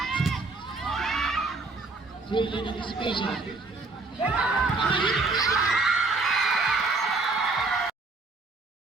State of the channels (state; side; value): quieter; left; 3.6 dB